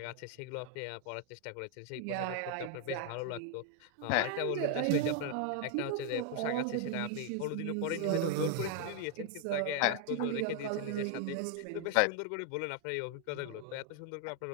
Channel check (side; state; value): both; different; correlation 0.00